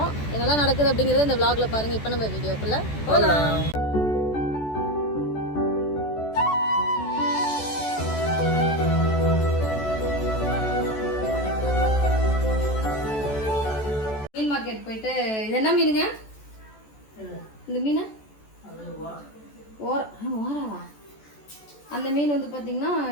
என்னெல்லாம் நடக்குது அப்படிங்கிறத இந்த vlogல பாருங்கள். இப்போ நம்ம வீடியோக்குள்ளே போகலாம். மீன் மார்க்கெட் போயிட்டு இது என்ன மீனுங்க? இந்த மீன் ஓராவா? அந்த மீன் வந்து பார்த்தீங்கன்னா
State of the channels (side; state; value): right; late; 14 ms